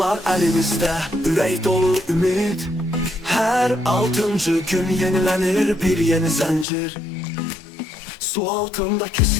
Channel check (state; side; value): drops out; right; at 6.7 s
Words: elimizde, ürək dolu ümid. Her 6. gün yenilenir bir yeni zincir. Su altında